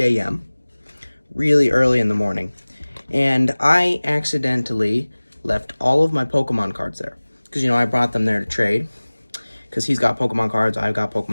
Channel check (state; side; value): inverted; both; correlation -1.00